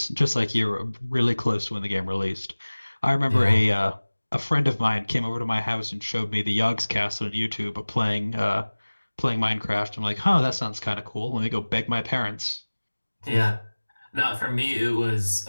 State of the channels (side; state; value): both; inverted; correlation -1.00